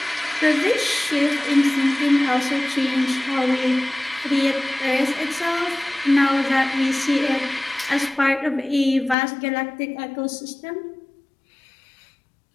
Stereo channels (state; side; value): drops out; right; at 9.2 s